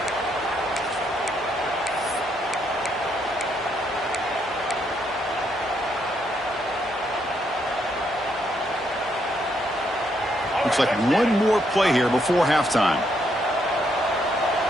Looks like one more play here before halftime.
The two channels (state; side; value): normal; both; correlation 0.75